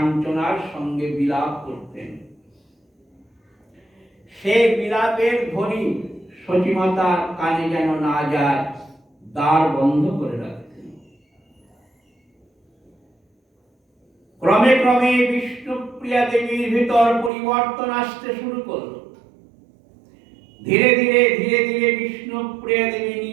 সঙ্গে বিলাপ করতেন। সে বিলাপের ধ্বনি সতীমাতার কানে যেন না যায়, দ্বার বন্ধ করে রাখতেন। ক্রমে ক্রমে বিষ্ণুপ্রিয়া দেবীর ভিতর পরিবর্তন আসতে শুরু করলো। ধীরে ধীরে ধীরে ধীরে বিষ্ণুপ্রিয়া দেবী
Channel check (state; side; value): drops out; left; at 17.3 s